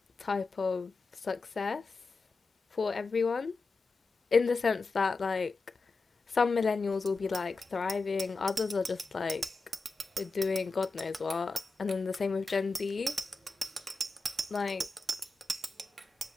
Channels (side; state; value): right; quieter; 3.7 dB